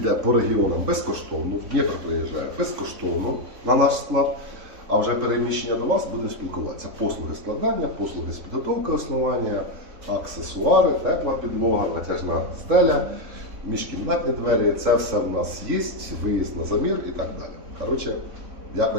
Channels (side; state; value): left; late; 3.6 ms